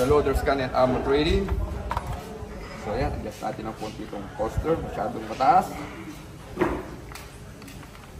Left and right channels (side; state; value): both; identical; correlation 1.00